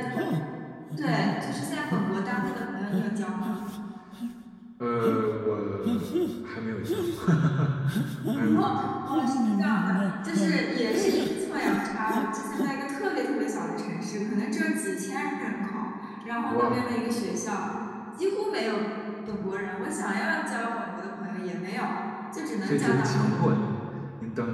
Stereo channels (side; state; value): both; identical; correlation 1.00